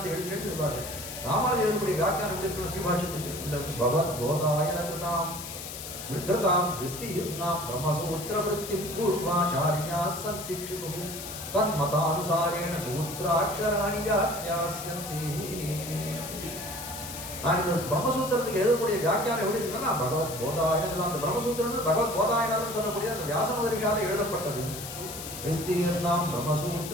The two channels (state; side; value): noise; left; hiss, 9 dB below the sound